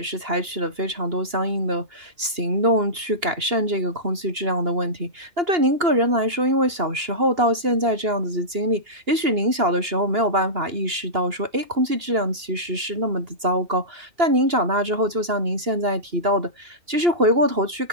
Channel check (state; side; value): late; left; 2.8 ms